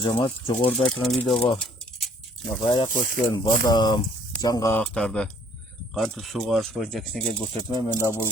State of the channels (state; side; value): normal; both; correlation 0.60